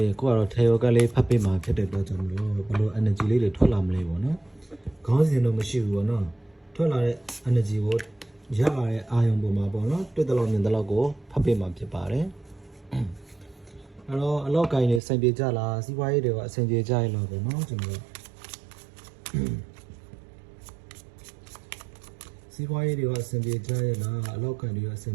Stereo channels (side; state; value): left; drops out; at 15.0 s